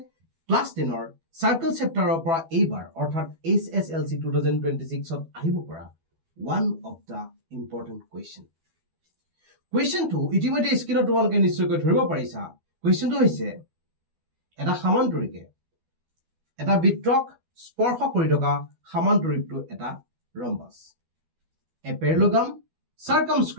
ক্লাস 10 ৰ সাৰ্কেল চেপ্টাৰৰ পৰা এইবাৰ অৰ্থাৎ HSLC 2026 ত আহিব পৰা one of the important question. Questionটো ইতিমধ্যে স্ক্ৰিনত তোমালোকে নিশ্চয়কৈ ধৰিব পাৰিছা. Questionটো হৈছে এটা সমান্তৰিকে এটা বৃত্তক স্পৰ্শ কৰি থকা সমান্তৰিকটো এটা ৰম্বাস. A parallelogram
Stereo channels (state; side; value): late; left; 12 ms